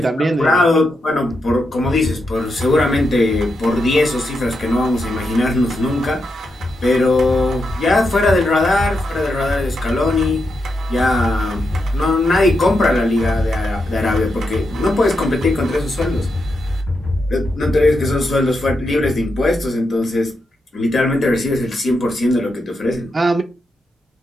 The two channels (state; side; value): normal; both; correlation 0.85